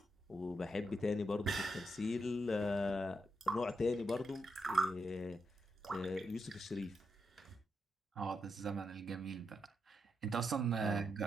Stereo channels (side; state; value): both; normal; correlation 0.83